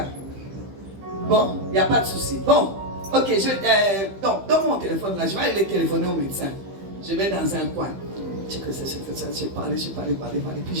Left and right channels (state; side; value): late; left; 15 ms